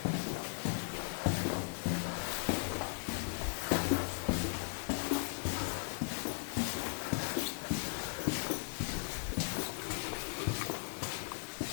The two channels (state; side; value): silent; right; digital silence